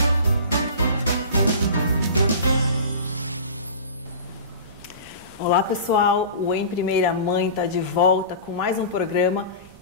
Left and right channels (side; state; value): both; inverted; correlation -0.35